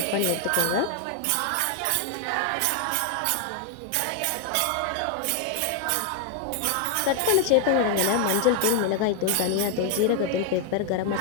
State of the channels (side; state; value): both; different; correlation 0.00